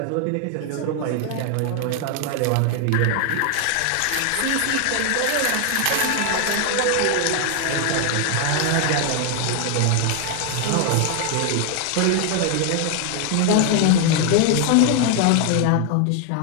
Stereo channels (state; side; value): different; both; correlation 0.00